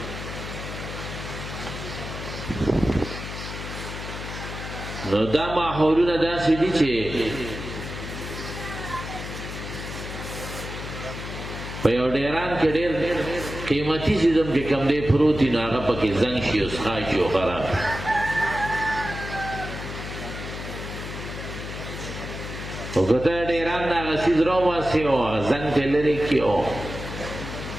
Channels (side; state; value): left; noise; hum, 8 dB below the sound